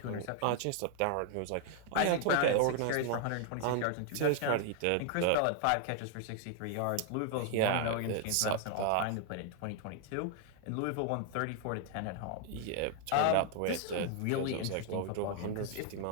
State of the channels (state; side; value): different; both; correlation 0.00